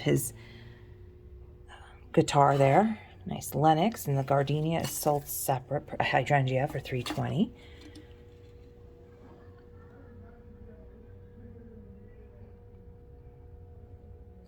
his guitar there. Nice Lennox, and the gardenia is sold separate, hydrangea for $3.20.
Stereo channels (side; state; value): both; identical; correlation 1.00